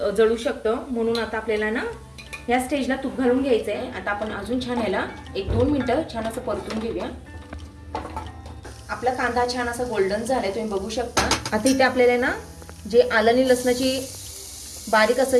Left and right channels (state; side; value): identical; both; correlation 1.00